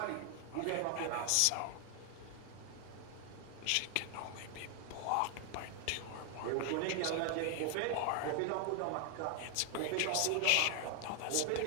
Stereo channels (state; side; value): different; both; correlation 0.00